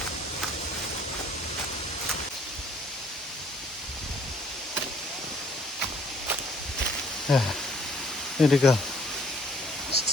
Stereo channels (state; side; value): normal; both; correlation 0.61